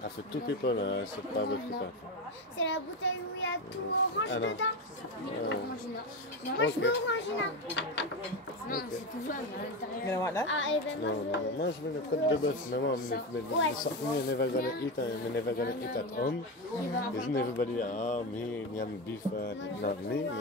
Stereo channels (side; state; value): both; normal; correlation 0.17